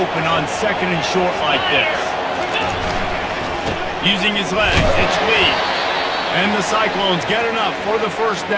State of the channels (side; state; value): both; identical; correlation 1.00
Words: on 2nd and short like this. Using his legs, it's lead. And the Cyclones get enough for the 1st